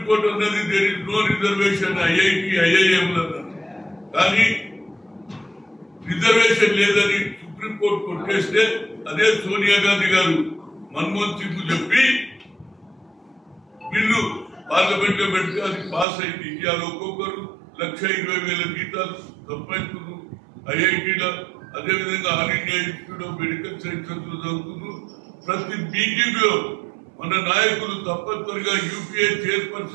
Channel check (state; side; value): drops out; left; at 16.1 s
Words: అన్నది there is no reservation IIT IIM కానీ రిజర్వేషన్ లేదని సుప్రీంకోర్టు కొట్టేస్తే అదే సోనియా గాంధీ గారు మన్మోహన్ సింగ్ చెప్పి బిల్లు పార్లమెంట్ లో పెడితే అది పాస్ అయింది. ఇవాళ ఒక్కొక్కరు 1,20,000 జీతాలు సంపాదించుకున్నారు ఐఐటీలో. అదేవిధంగా all India institute of medical sciences లో చదువుతున్నారు. ప్రతి మీటింగ్ లో మన నాయకులు తప్పనిసరిగా యూపీఏ